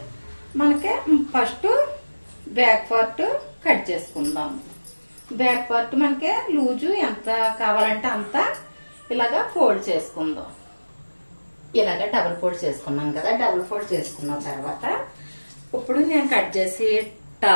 మనకి ఫస్ట్ బ్యాక్ పార్ట్ కట్ చేసుకుందాం. బ్యాక్ పార్ట్ మనకి లూజు ఎంత కావాలంటే అంత ఇలాగా ఫోల్డ్ చేసుకుందాం. ఇలాగా డబుల్ ఫోల్డ్ చేసుకున్నాం కదా. డబుల్ ఫోల్డ్ చేసుకున్న తర్వాత ఇప్పుడు నేను కట్ చేసి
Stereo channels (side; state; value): both; inverted; correlation -1.00